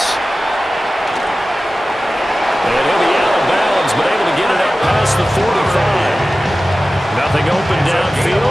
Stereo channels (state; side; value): normal; both; correlation 0.95